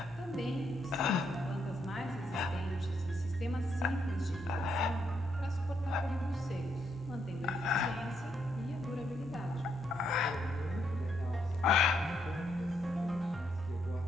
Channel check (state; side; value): normal; both; correlation 0.76